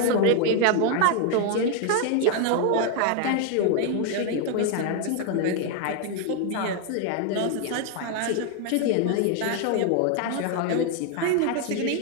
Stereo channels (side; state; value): both; different; correlation 0.00